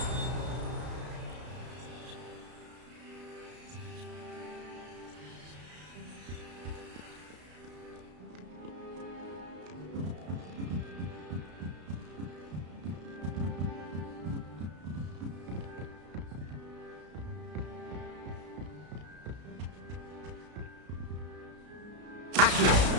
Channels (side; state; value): left; late; 33 ms